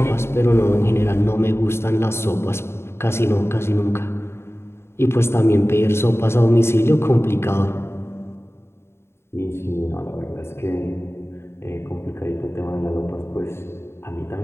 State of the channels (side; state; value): right; late; 0.12 ms